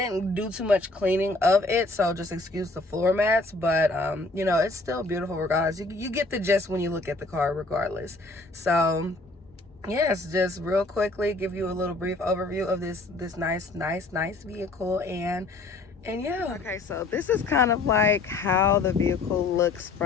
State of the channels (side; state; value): right; quieter; 3.3 dB